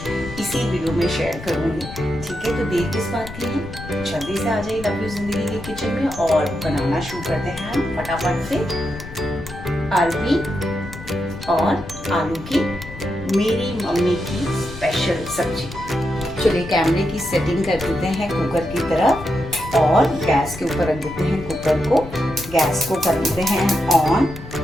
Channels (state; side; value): noise; left; rumble, 13 dB below the sound